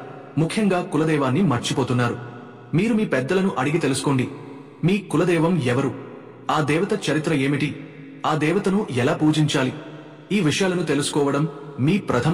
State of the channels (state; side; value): identical; both; correlation 1.00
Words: ముఖ్యంగా కులదైవాన్ని మర్చిపోతున్నారు. మీరు మీ పెద్దలను అడిగి తెలుసుకోండి. మీ కులదైవం ఎవరు? ఆ దేవత చరిత్ర ఏమిటి? ఆ దేవతను ఎలా పూజించాలి? ఈ విషయాలను తెలుసుకోవడం మీ